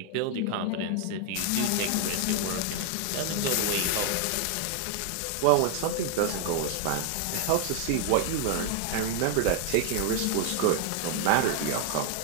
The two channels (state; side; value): different; both; correlation 0.00